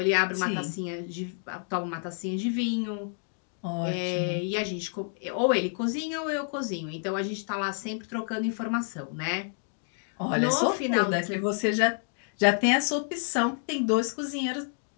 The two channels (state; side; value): silent; right; 59 dB below the other